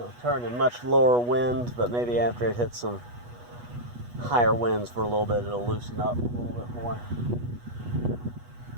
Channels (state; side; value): late; left; 8.3 ms